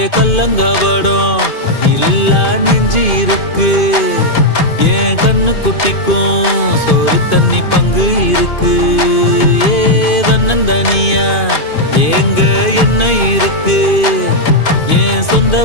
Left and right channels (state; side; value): late; right; 2.5 ms